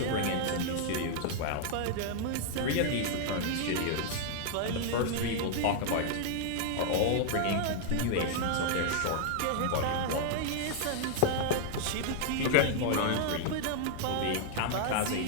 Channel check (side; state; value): both; different; correlation 0.00